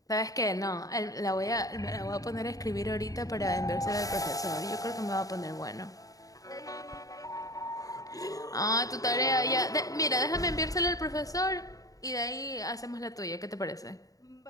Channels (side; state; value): right; late; 0.17 ms